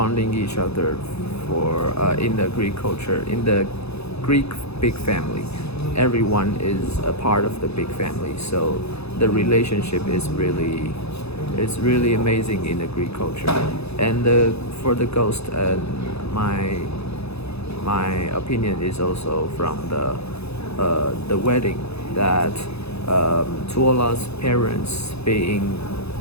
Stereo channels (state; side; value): late; right; 0.79 ms